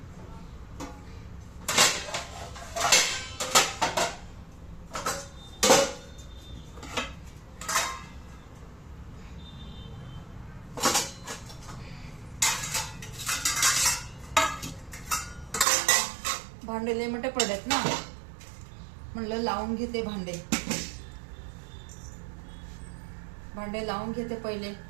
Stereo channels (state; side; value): drops out; left; at 15.7 s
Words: भांडे लय मोठे पडलेत ना, म्हणलं लावून घेते भांडे. भांडे लावून घेते पहिले.